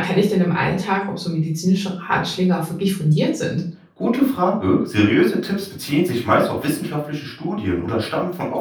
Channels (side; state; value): both; identical; correlation 1.00